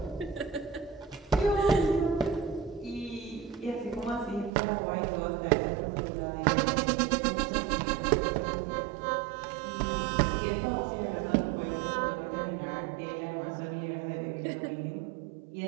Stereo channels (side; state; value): left; drops out; at 4.5 s